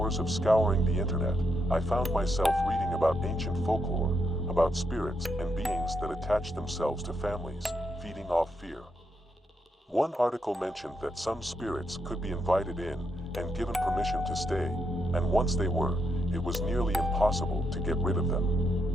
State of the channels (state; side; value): normal; both; correlation 0.79